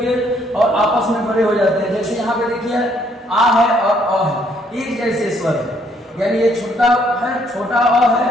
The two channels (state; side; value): normal; both; correlation 0.68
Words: और आपस में बड़े हो जाते हैं। जैसे यहाँ पे देखिए आ है और अ है, एक जैसे स्वर है, यानी ये छोटा अ है